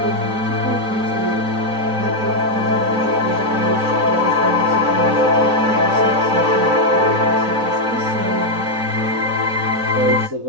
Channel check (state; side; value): late; left; 4.0 ms